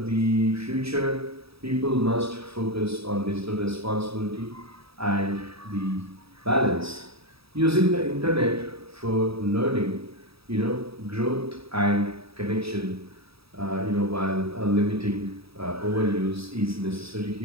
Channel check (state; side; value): late; left; 0.77 ms